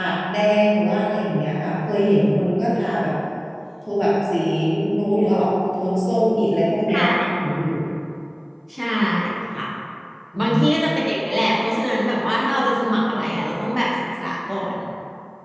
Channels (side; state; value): both; identical; correlation 1.00